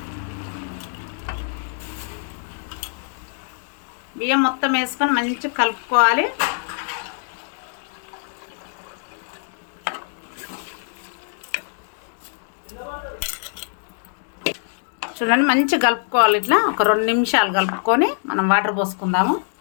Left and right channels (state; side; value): silent; right; digital silence